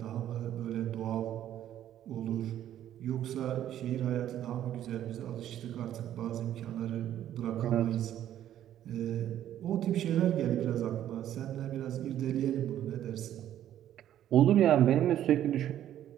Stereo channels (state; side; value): quieter; left; 11.5 dB